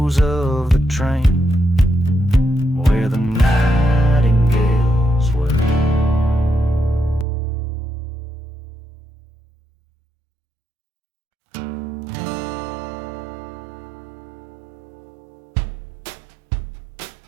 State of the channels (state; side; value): drops out; left; at 7.2 s